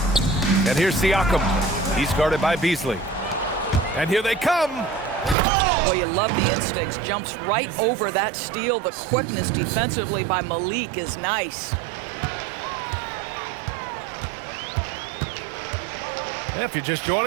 And here's Siakam. He's guarded by Beasley. And here they come. Boy, you love the instincts. Jumps right over that steal. The quickness defensively by Myleague is nice. If you're just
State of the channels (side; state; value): left; drops out; at 5.4 s